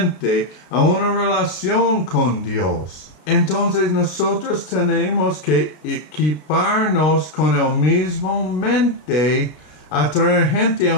a una relación con Dios. Entonces nosotros tenemos que equiparnos con el mismo mente a traer gente a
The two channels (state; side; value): late; right; 33 ms